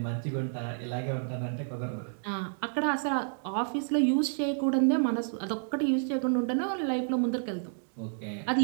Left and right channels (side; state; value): left; silent; digital silence